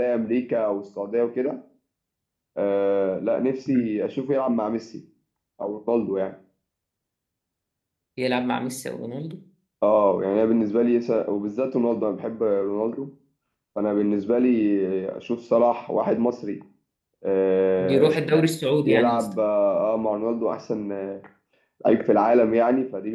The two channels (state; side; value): identical; both; correlation 1.00